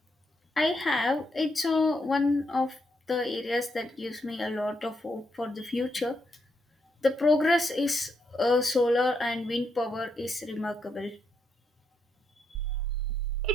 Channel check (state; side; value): normal; both; correlation 0.80